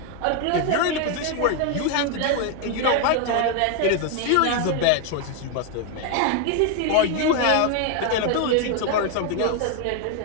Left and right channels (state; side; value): different; both; correlation 0.01